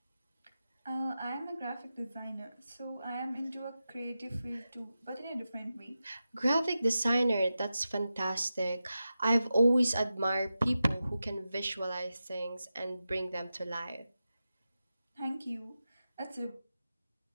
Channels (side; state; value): both; inverted; correlation -0.92